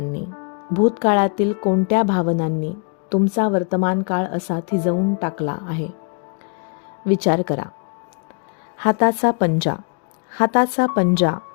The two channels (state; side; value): quieter; right; 38.5 dB